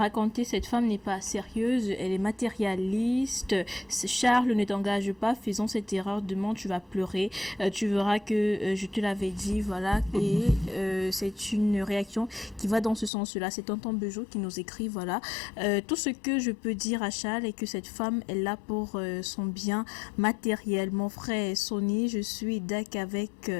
cette femme n'est pas sérieuse, elle est matérialiste. Charles, ne t'engage pas, faisons cette erreur, demain tu vas pleurer, tu verras que je te l'avais dit, voilà. Et c'est une réaction qui va dans ce sens-là. C'est Tonton Bejo qui nous écrit, voilà. Tout ce que je peux dire à Charles est que cette femme est là pour son bien matériel. Mon frère Sony, je suis d'accord avec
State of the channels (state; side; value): drops out; right; at 13.1 s